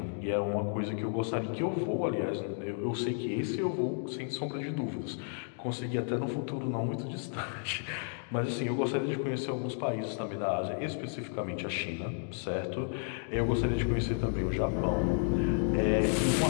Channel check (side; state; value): right; silent; 56 dB below the other